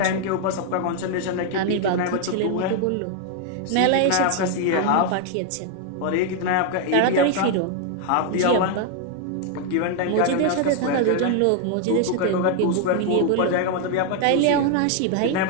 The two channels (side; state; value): both; different; correlation 0.00